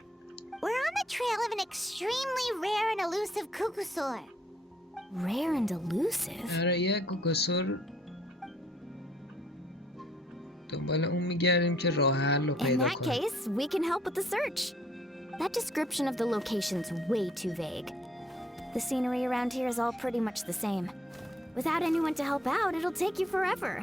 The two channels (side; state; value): both; normal; correlation 0.64